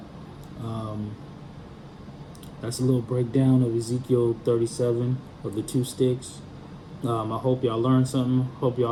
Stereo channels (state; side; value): identical; both; correlation 1.00